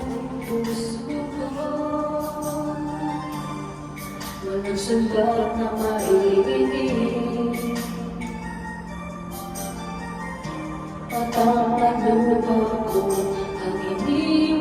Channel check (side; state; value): both; identical; correlation 1.00